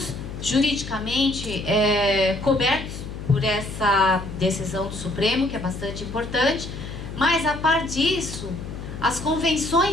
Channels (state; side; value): noise; left; hum, 9 dB below the sound